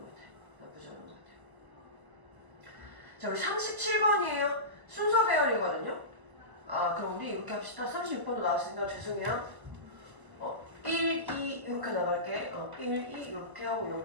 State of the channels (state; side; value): late; left; 1.0 ms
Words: 같아. 나쁘지 않은 것 같아. 자, 우리 37번이에요. 순서 배열이거든요. 그럼 우리 이렇게 합시다. 36번도 나왔으니까 죄송해요. 1, 2 이렇게 나갈게. 1, 2 이렇게 하고